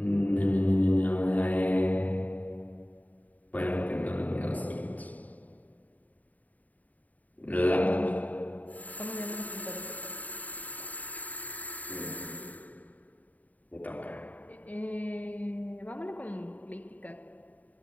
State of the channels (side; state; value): right; late; 0.075 ms